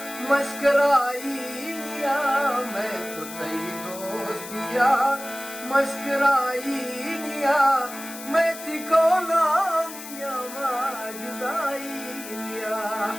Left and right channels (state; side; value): noise; left; hiss, 12 dB below the sound